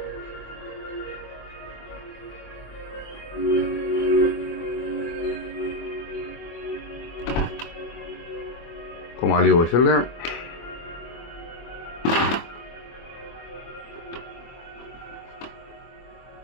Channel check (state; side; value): late; right; 24 ms